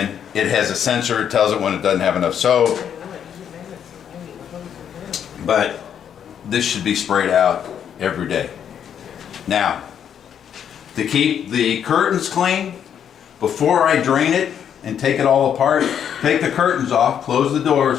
It has a sensor. It tells it when it doesn't have enough soap. But this should be sprayed out every day. Now, to keep the curtains clean, before I drain it and take it all apart, take the curtains off, close the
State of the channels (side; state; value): right; quieter; 8.7 dB